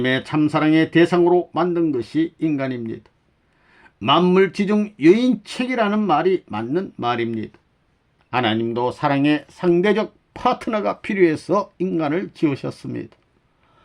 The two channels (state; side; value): identical; both; correlation 1.00